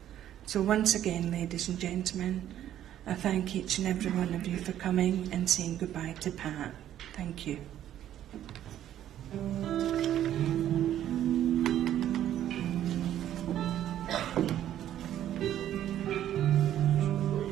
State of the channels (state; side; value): quieter; left; 11.5 dB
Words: So once again, ladies and gentlemen, I thank each and every one of you for coming and saying goodbye to Pat. Thank you.